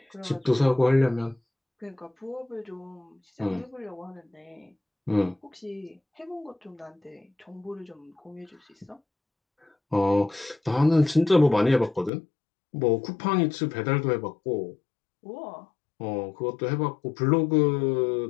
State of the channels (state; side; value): drops out; right; at 12.1 s